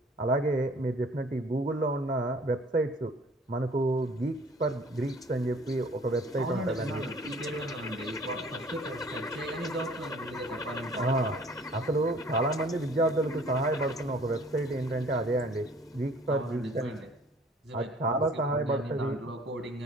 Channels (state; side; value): normal; both; correlation 0.53